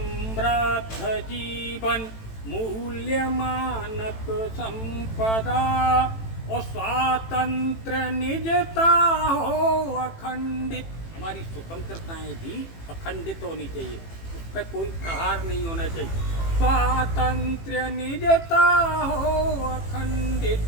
जीवन मूल्य मानक संपदा। और स्वातंत्र निजता हो अखंडित। हमारी स्वतंत्रताएं भी अखंडित होनी चाहिए, उस पर कोई प्रहार नहीं होना चाहिए। स्वातंत्र्य निजता हो अखंडित,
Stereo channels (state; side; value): late; right; 18 ms